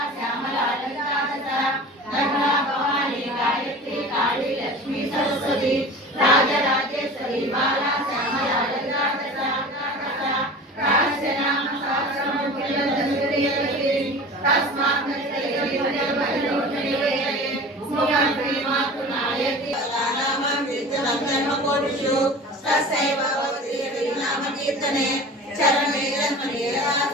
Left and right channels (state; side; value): normal; both; correlation 0.37